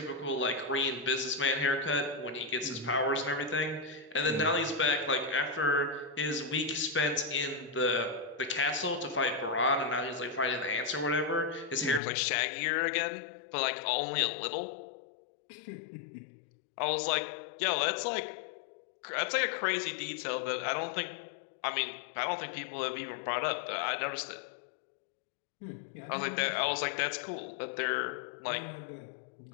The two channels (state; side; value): drops out; right; at 12.0 s